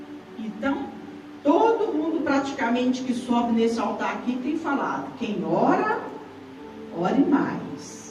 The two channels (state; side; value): identical; both; correlation 1.00